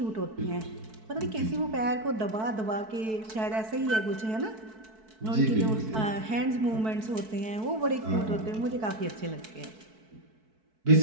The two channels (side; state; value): left; late; 4.6 ms